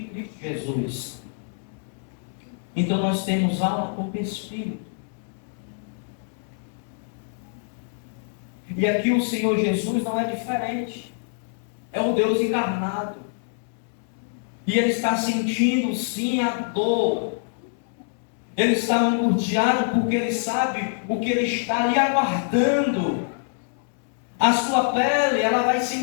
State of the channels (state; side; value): silent; right; digital silence